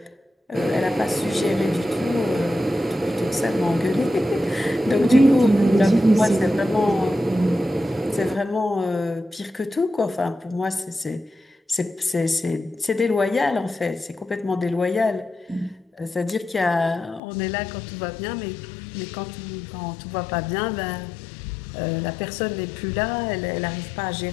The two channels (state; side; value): drops out; right; at 17.2 s